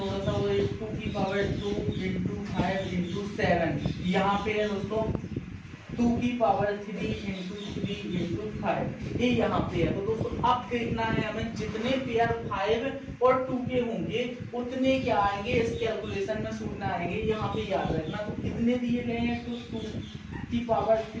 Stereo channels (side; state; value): both; identical; correlation 1.00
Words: सा, वो 2 की पावर 2 इंटू 5 इंटू 7। यहाँ पे है दोस्तों 2 की पावर 3 इंटू 3 इंटू 5, ये यहाँ पे है। तो दोस्तों अब देखना है हमें, जितने पेयर 5 और 2 के होंगे उतने क्या आएंगे इस कैलकुलेशन में शून्य आएंगे। यहाँ पे याद रखना, तो कितने दिए गए हैं, तो 2 की पावर